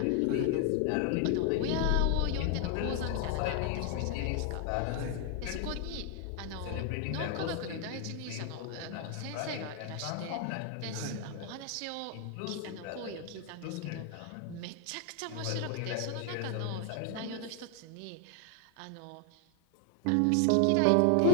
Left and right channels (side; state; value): both; different; correlation 0.00